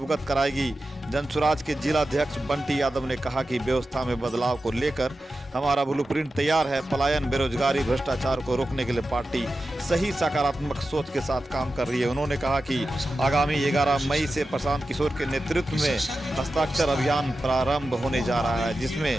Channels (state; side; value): normal; both; correlation 0.92